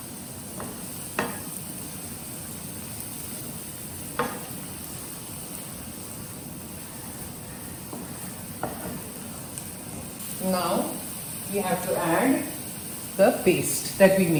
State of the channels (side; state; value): both; identical; correlation 1.00